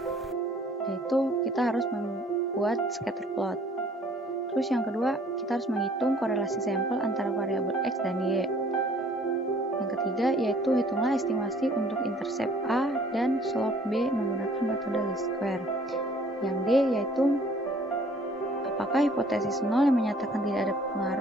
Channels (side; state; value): both; normal; correlation 0.57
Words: Yaitu kita harus membuat scatter plot. Terus yang kedua, kita harus menghitung korelasi sampel antara variabel X dan Y. Yang ketiga yaitu hitunglah estimasi untuk intercept A dan slope B menggunakan metode least square. Yang D yaitu apakah hipotesis 0 yang menyatakan tidak ada